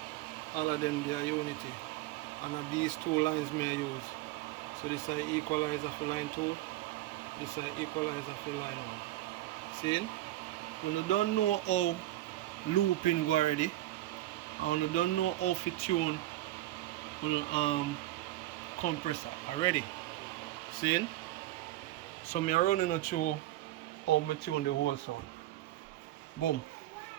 all of them they are unity. And these two lines may I use. So this is equalizer for line 2. This is equalizer for line 1. See? When you don't know how looping go already, and when you don't know how to tune compressor already. See? So me running you through how me tune the whole sound. Boom.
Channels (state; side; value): quieter; left; 15.8 dB